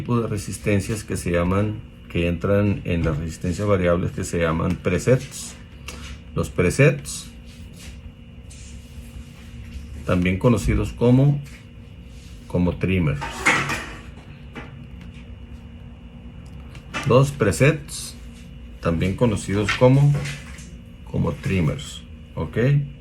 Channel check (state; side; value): identical; both; correlation 1.00